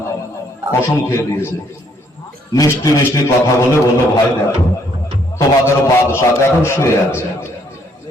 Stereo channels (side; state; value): both; normal; correlation 0.68